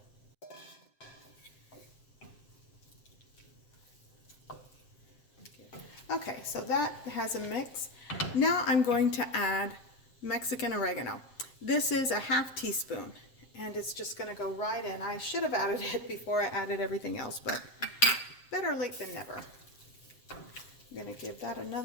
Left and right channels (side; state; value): right; late; 7.6 ms